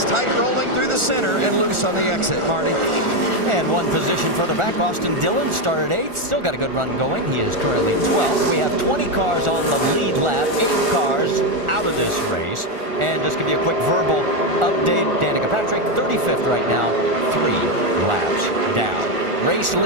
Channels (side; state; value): left; late; 1.4 ms